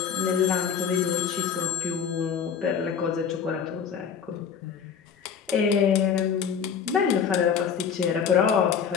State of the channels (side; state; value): right; quieter; 7.2 dB